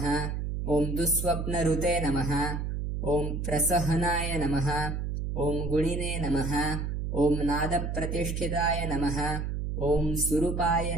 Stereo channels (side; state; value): right; noise; hum, 2 dB below the sound